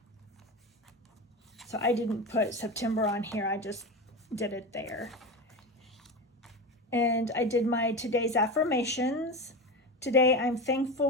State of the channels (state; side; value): normal; both; correlation 0.23